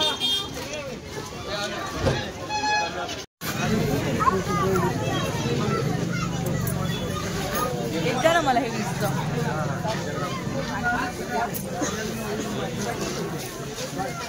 एकदा ना मला हे दिसतं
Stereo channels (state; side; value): identical; both; correlation 1.00